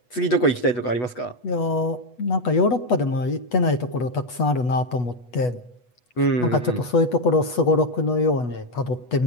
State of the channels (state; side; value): late; right; 8.2 ms